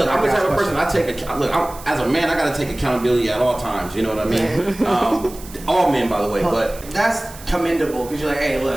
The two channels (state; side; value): noise; right; hiss, 18 dB below the sound